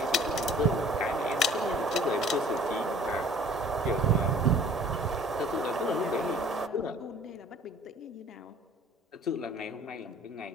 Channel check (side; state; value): both; normal; correlation 0.51